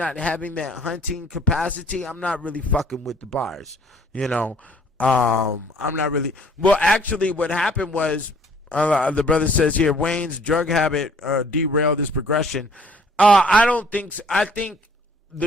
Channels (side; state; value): both; normal; correlation 0.57